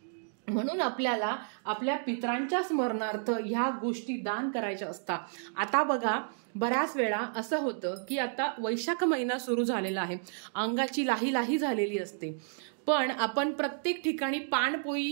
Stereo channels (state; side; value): silent; left; digital silence